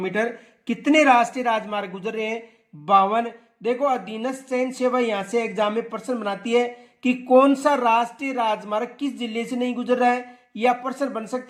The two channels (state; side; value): identical; both; correlation 1.00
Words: कितने राष्ट्रीय राजमार्ग गुजर रहे हैं? 52। देखो अधीनस्थ चयन सेवा यहां से एग्जाम में प्रश्न बनाती है कि कौन सा राष्ट्रीय राजमार्ग किस जिले से नहीं गुजर रहा है, या प्रश्न बन